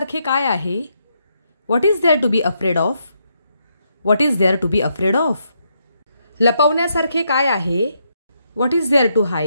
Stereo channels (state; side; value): inverted; both; correlation -0.78